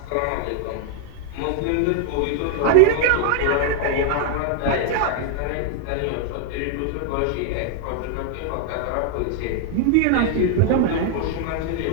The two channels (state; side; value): different; both; correlation 0.00